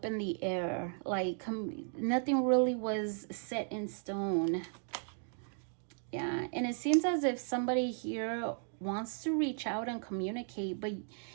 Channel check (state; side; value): silent; left; 54 dB below the other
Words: in the air, like nothing really was set in stone. Yeah, and it seems as if somebody here wants to reach out and communicate,